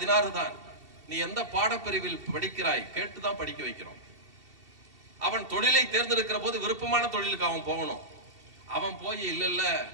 தான். நீ எந்த பாடப்பிரிவில் படிக்கிறாய் கேட்டுதான் படிக்க வைக்கிறோம். அவன் தொழிலை தேர்ந்தெடுக்கிற போது விருப்பமான தொழிலுக்கு அவன் போகணும். அவன் போய் இல்ல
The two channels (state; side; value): late; left; 2.7 ms